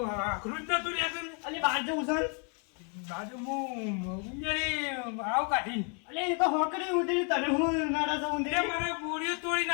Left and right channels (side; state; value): right; quieter; 38.5 dB